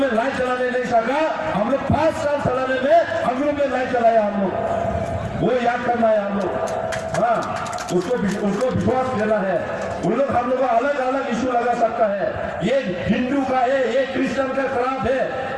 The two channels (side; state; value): both; identical; correlation 1.00